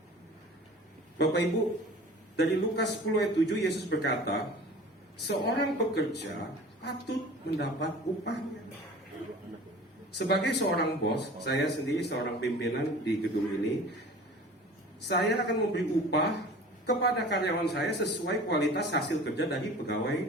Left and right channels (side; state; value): both; normal; correlation 0.42